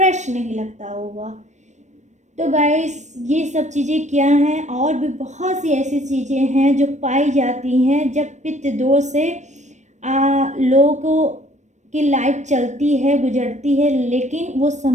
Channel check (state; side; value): late; left; 0.34 ms